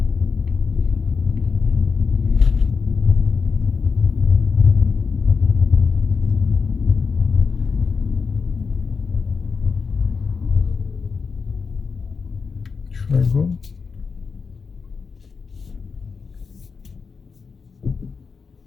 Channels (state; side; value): quieter; right; 5.2 dB